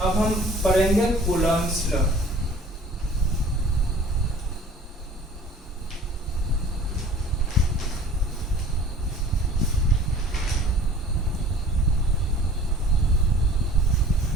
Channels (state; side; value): normal; both; correlation 0.47